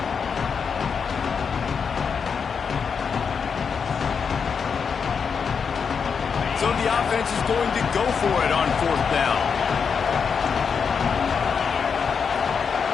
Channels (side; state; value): right; quieter; 6.2 dB